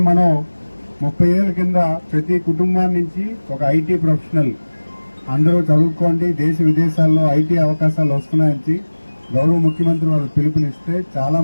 మనం 30 ఏళ్ల కింద ప్రతి కుటుంబాన్ని నుంచి ఒక ఐటీ ప్రొఫెషనల్ అందరూ చదువుకోండి, దేశ విదేశాల్లో ఐటీ అవకాశాలు వస్తున్నాయని గౌరవ ముఖ్యమంత్రి వాళ్ళు పిలుపునిస్తే చాలా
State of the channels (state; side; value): inverted; both; correlation -1.00